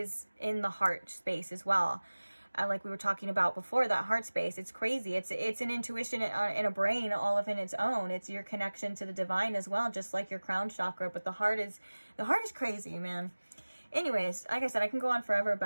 in the heart space as well. Like we were talking about before, that heart space, it's crazy. It's an intuition in a brain all of in its own. It's your connection to the divine as well, just like your crown chakra. But the heart is crazy, man. Anyways, like I said, I can go on forever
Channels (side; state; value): both; inverted; correlation -1.00